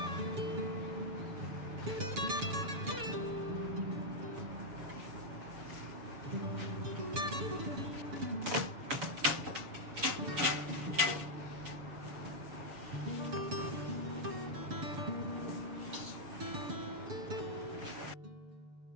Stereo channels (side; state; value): left; late; 6.9 ms